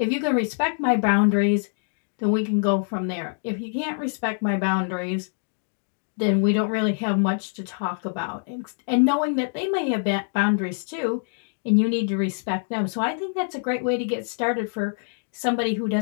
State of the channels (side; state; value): right; silent; digital silence